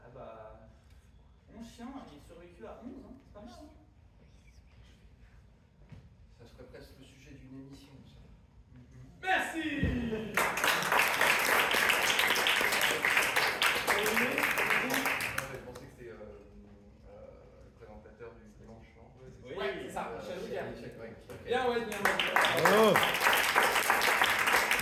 bah... Mon chien, il est survécu à 11, hein. C'est pas mal, hein. Ça serait presque le sujet d'une émission, ça. Merci. Je pensais que c'était le présentateur du dimanche, non? Ouais, c'est ça, Michel Drucker. Bien, Bien, bien. Bravo.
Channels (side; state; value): both; identical; correlation 1.00